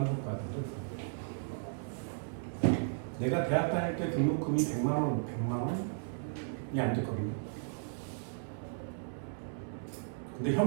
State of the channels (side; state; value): left; silent; 54 dB below the other